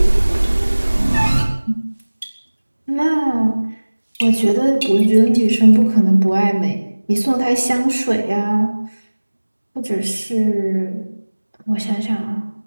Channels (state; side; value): inverted; both; correlation -1.00